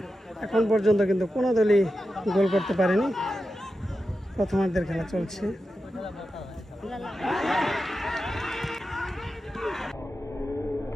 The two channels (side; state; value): both; normal; correlation 0.90